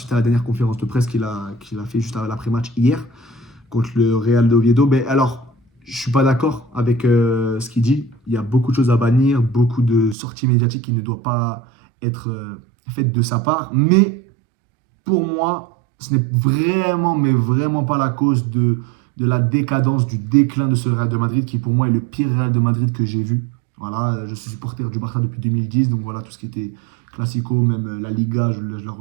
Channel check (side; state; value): left; drops out; at 10.2 s